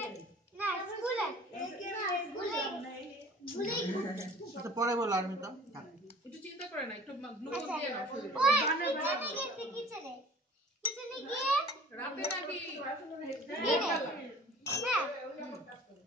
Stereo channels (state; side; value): normal; both; correlation 0.47